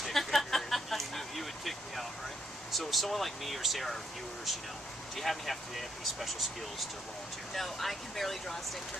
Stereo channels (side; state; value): both; normal; correlation 0.75